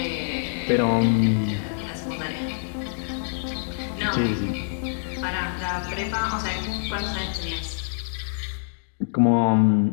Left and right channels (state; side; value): silent; right; digital silence